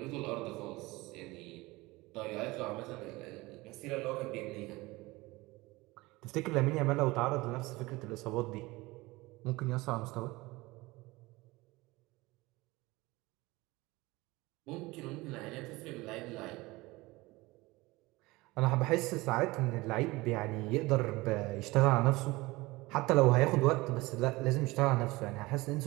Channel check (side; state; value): left; quieter; 21.4 dB